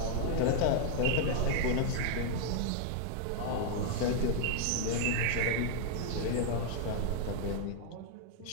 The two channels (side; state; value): both; different; correlation 0.00